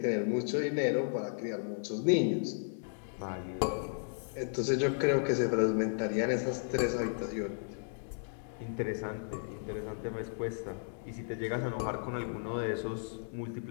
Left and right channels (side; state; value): right; silent; digital silence